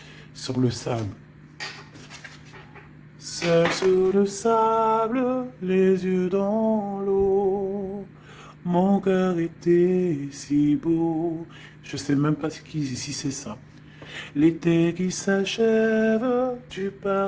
sur le sable. Seul sur le sable, les yeux dans l'eau. Mon cœur était si beau. Je sais même pas si c'est ça. L'été qui s'achève, tu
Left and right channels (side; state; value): both; identical; correlation 1.00